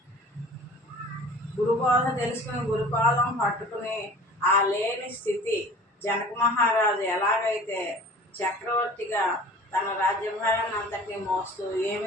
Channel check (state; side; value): normal; both; correlation 0.43